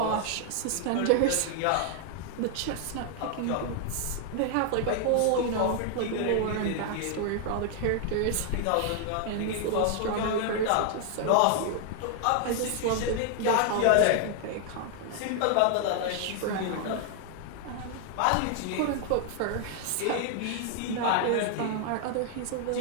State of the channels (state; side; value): different; both; correlation 0.00